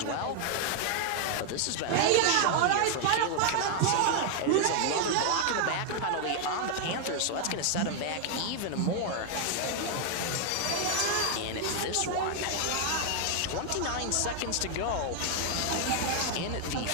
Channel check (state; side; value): different; both; correlation 0.00